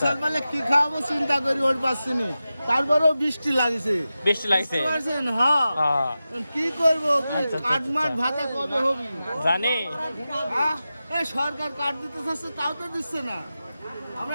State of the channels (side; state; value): both; inverted; correlation -0.93